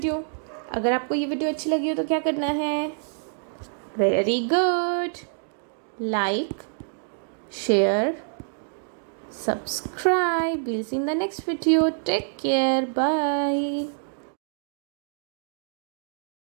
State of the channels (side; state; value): left; silent; digital silence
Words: अगर आपको ये वीडियो अच्छी लगी हो तो क्या करना है? Very good. Like, share, subscribe. We'll see in the next video. Take care. Bye.